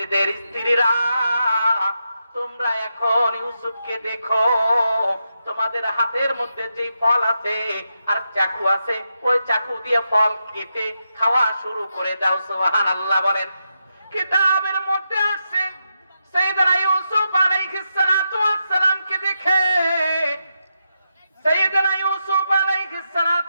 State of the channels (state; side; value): inverted; both; correlation -0.85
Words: স্ত্রীরা, তোমরা এখন ইউসুফকে দেখো, তোমাদের হাতের মধ্যে যে ফল আছে আর চাকু আছে, ওই চাকু দিয়ে ফল কেটে খাওয়া শুরু করে দাও। সুবহানাল্লাহ বলেন। কিতাবের মধ্যে আছে সাইয়েদনা ইউসুফ আলাইহিস সালাতু ওয়াস সালামকে দেখে, সাইয়েদনা ইউসুফ আলাইহিস